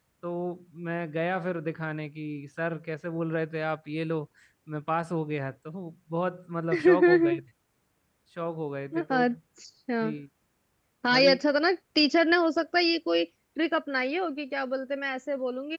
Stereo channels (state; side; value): identical; both; correlation 1.00